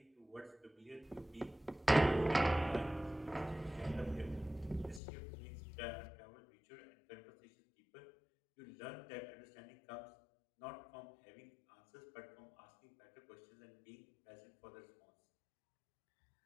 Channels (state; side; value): drops out; right; at 5.0 s